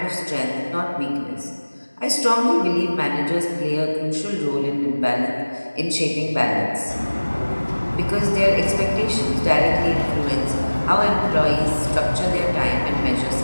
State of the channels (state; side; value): inverted; both; correlation -1.00